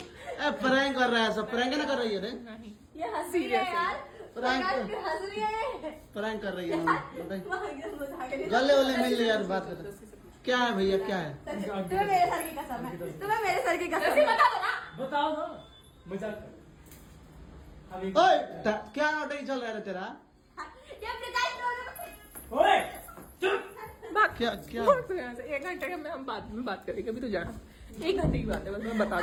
प्रैंक कर रहा है, सब प्रैंक ना कर रही है रे, नहीं ये हंस रही है Serious है। यार। Prank- प्रकाश हंस रही है ये। प्रैंक कर रही है यार, बताइए। मजाक है। गले वाले मिल ले यार, बात कर। क्या है भैया, क्या है? तुम्हें मेरे सर की कसम है, तुम्हें मेरे सर की कसम जैसी है। बता दो ना। बताओ ना, मजाक कर। अब एक- ओए क्या नोटई चल रहा है रे तेरा? ये प्रकाश रोने ओए, चुप। बात क्या क्या? बहुत हो यहाँ से 1 घंटे के में हम बाद में बात करेंगे, अभी तो जाना 1 घंटे की बात है, बस मैं बता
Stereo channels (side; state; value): both; identical; correlation 1.00